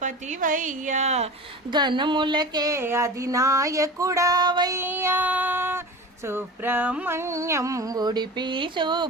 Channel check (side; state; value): both; normal; correlation 0.33